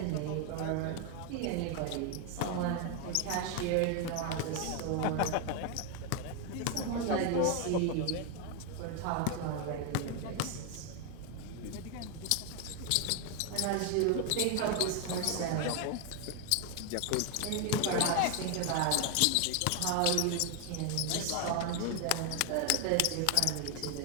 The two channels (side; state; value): both; different; correlation 0.01